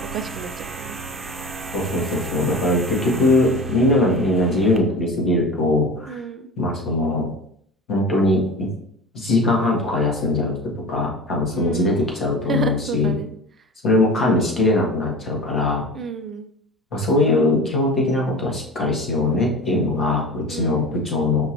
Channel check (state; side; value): normal; both; correlation 0.33